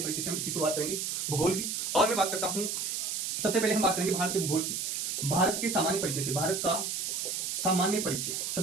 परिचय से हम इसकी शुरुआत करेंगे भूगोल की। और मैं बात करता हूँ, सबसे पहले हम बात करेंगे भारत के भूगोल की, भारत के सामान्य परिचय से। भारत का सामान्य परिचय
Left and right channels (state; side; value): noise; right; hiss, 2 dB below the sound